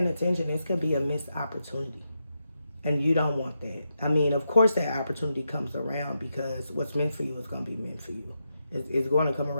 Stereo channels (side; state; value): both; inverted; correlation -0.85